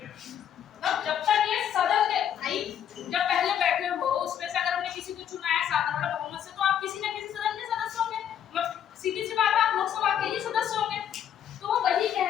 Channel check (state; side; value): quieter; right; 9.5 dB